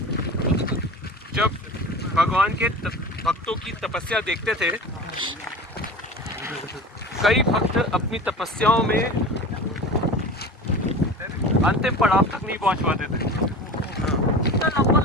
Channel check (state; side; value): normal; both; correlation 0.34